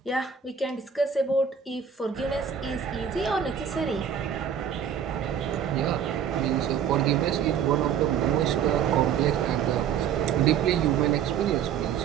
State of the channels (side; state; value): left; quieter; 8.0 dB